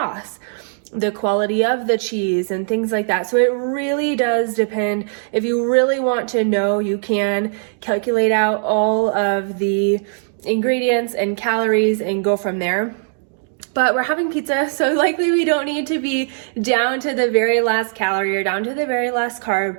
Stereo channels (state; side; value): silent; left; digital silence